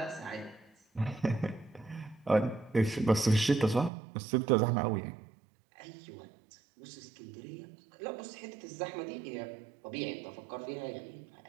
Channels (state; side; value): drops out; left; at 3.9 s